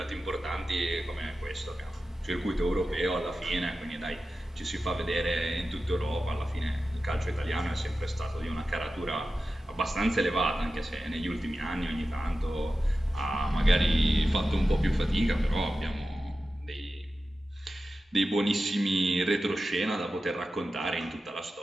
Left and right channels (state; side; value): normal; both; correlation 0.93